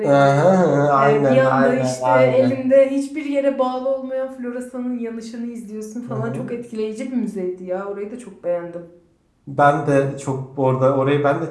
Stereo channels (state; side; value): identical; both; correlation 1.00